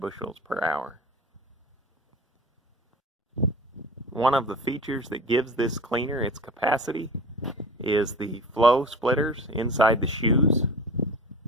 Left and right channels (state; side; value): normal; both; correlation 0.37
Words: per hour. One of the features that gives this cleaner its capacity is the flow splitters inside the shoes.